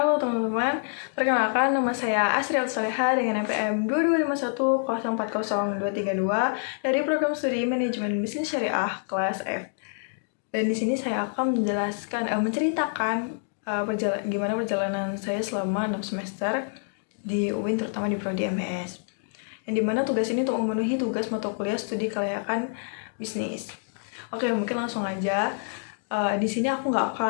teman-teman, perkenalkan nama saya Asri Al-Soleha dengan NPM 22510400232 dari program studi Manajemen Bisnis Syariah kelas F. Dan di sini saya akan menceritakan gimana perjalanan saya selama 6 semester di UIN, terutama di Prodi MBS. Yang dimana tugas ini untuk memenuhi tugas mata kuliah studi kelayakan bisnis. Oke, mungkin langsung aja. Di sini aku nggak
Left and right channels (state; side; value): silent; right; digital silence